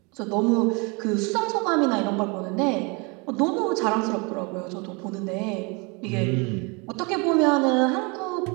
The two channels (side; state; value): left; quieter; 30.1 dB